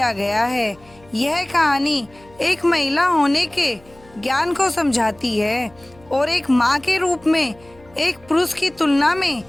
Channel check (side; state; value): left; noise; hum, 27 dB below the sound